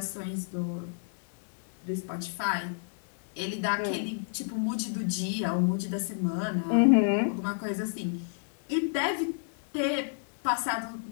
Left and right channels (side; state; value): right; silent; 58 dB below the other